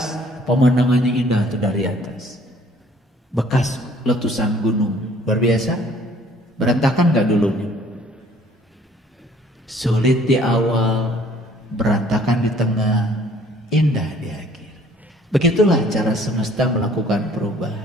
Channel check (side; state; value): both; normal; correlation 0.57